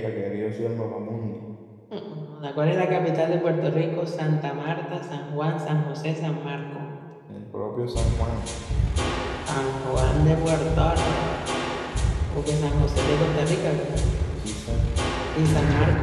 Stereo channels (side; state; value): both; identical; correlation 1.00